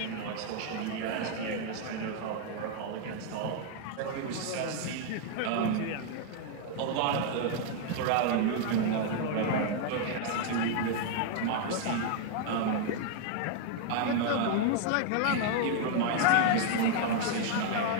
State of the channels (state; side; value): different; both; correlation 0.00